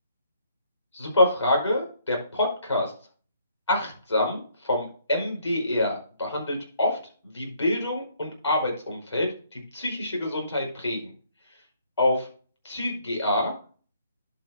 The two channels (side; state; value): both; inverted; correlation -0.66